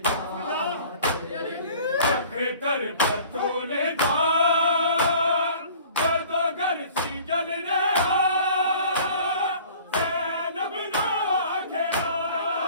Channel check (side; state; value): both; inverted; correlation -0.48